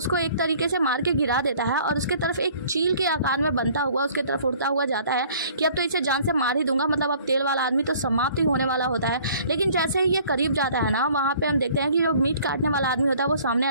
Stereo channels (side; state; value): both; inverted; correlation -0.54